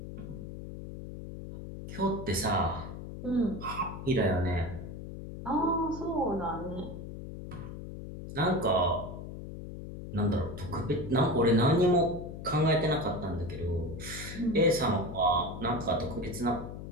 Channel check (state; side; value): noise; left; hum, 10 dB below the sound